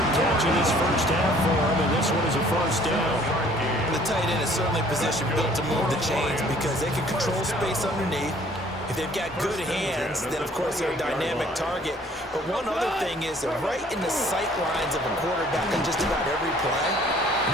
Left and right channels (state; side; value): normal; both; correlation 0.56